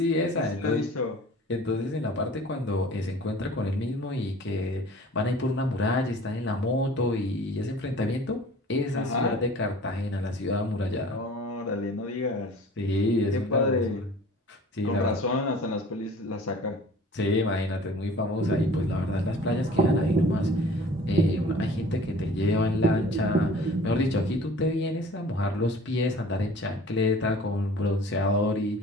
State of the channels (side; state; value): both; normal; correlation 0.46